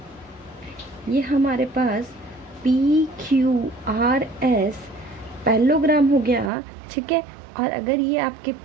ये हमारे पास PQRS पैरेललोग्राम हो गया, ठीक है। और अगर ये आपके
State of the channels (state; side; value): drops out; left; at 6.5 s